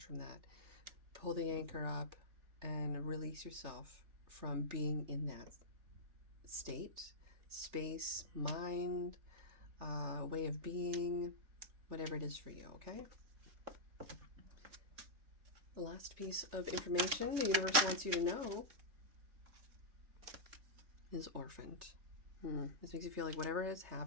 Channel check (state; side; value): late; left; 3.6 ms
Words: from that. Pull the anchor up and release yourself from being in that state, space, mind, way of being, whatever it is for you, okay? The last piece of information the universe wants you to know is orphaned. This makes you feel like whatever has